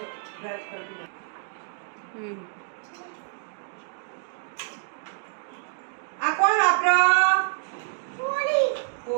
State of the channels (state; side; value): silent; left; digital silence